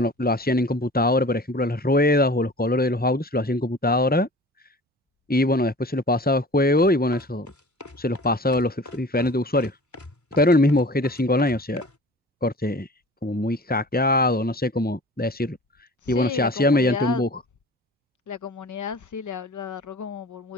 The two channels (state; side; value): normal; both; correlation 0.42